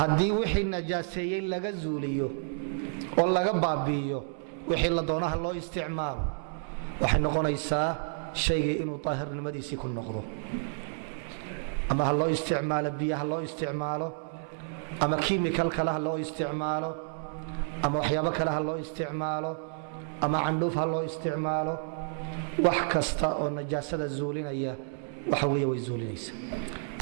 wixii najaaseeyey laga zuuliyo oo laga baabi'iyo wixii la doonaha loo isticmaalo waxay noqonaysaa shaygii inuu daahirnimadiisii ku noqdo ama ha loo isticmaalo biyo ha loo isticmaalo ama kiimikal kale ha loo isticmaalo ama waxyaabo kale ha loo isticmaalo ama candhuuf ha loo isticmaalo wax kasta oo najaasada zuulinaya waxa weeye way zuulinaysa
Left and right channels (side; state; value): left; silent; 58 dB below the other